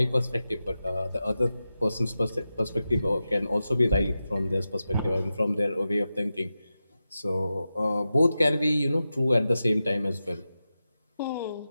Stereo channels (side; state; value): both; inverted; correlation -0.92